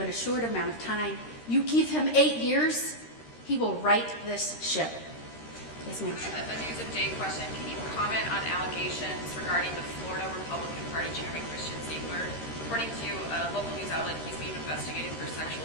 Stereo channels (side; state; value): right; late; 13 ms